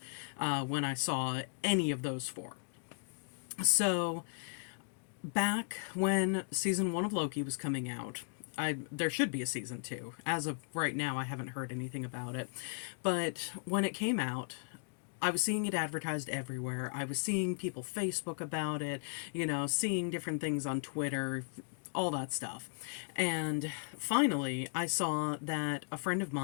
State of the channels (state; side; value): silent; right; digital silence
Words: when I saw any of those 4. So back when season 1 of Loki was coming out, there should be a season 2. As of right now, I haven't heard anything about it. But when it came out, I was seeing it advertised everywhere. I was seeing people Facebook about it, seeing different things on Twitter, all that stuff. And finally, I saw that a friend of